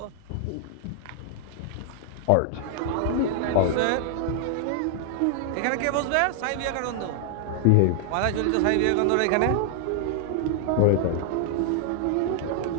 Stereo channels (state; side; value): different; both; correlation 0.00